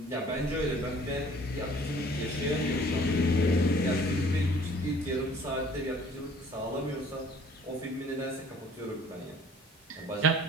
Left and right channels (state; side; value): normal; both; correlation 0.53